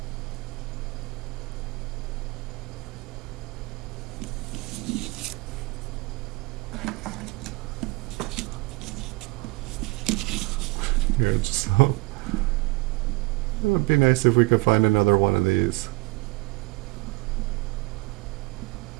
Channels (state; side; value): quieter; left; 23.4 dB